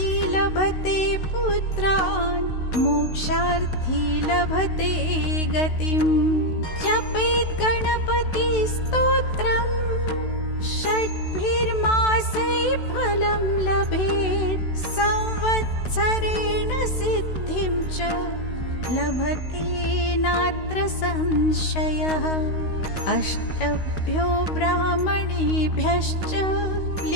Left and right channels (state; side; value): late; right; 16 ms